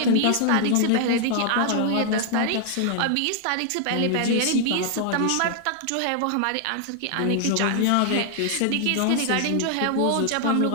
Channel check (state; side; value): different; both; correlation 0.00